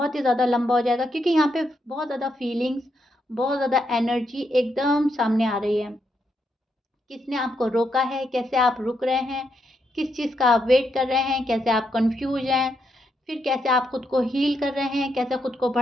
ही ज़्यादा लंबा हो जाएगा, क्योंकि यहाँ पे बहुत ज़्यादा फीलिंग्स, बहुत ज़्यादा एनर्जी एकदम सामने आ रही है। किसने आपको रोका है, कैसे आप रुक रहे हैं, किस चीज़ का आप वेट कर रहे हैं, कैसे आप कन्फ्यूज़ हैं, फिर कैसे आप खुद को हील कर रहे हैं, कैसे खुद को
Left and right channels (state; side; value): normal; both; correlation 0.80